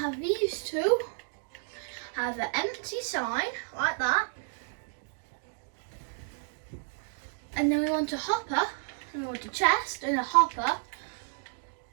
these two have an empty sign, like that. And then we want a hopper, and we want a chest and a hopper.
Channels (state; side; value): silent; left; 57 dB below the other